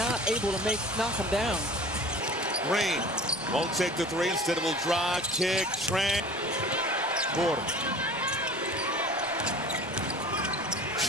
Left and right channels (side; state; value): both; normal; correlation 0.41